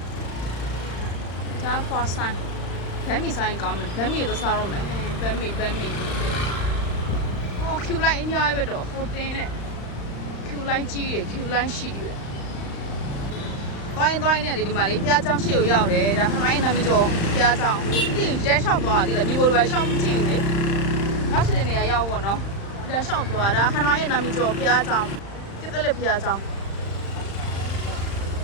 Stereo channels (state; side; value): late; right; 35 ms